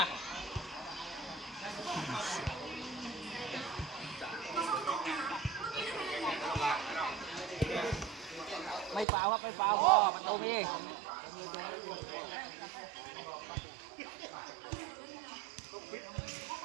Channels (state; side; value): drops out; left; at 9.1 s